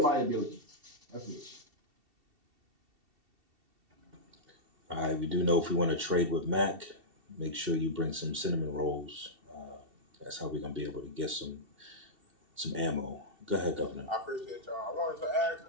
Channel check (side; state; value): left; late; 2.7 ms